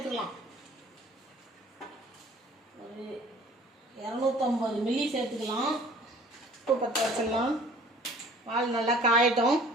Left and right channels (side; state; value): both; normal; correlation 0.51